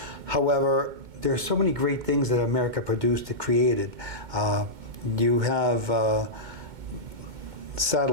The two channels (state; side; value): late; left; 2.2 ms